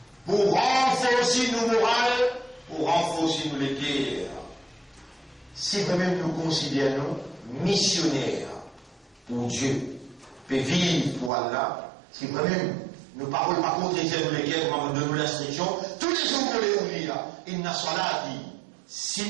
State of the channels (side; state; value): left; drops out; at 11.3 s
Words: pour renforcer nos morales, pour renforcer nos cœurs. Si vraiment nous considérons missionnaires pour Dieu, pour vivre pour Allah, si vraiment nous ne parlons pas contre les cœurs, comme de nous l'instruction, tous les jours pour les oublier, inna salati.